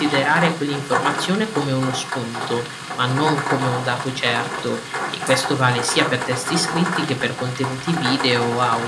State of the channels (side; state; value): both; identical; correlation 1.00